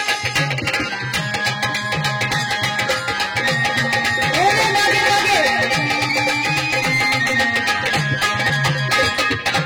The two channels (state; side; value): identical; both; correlation 1.00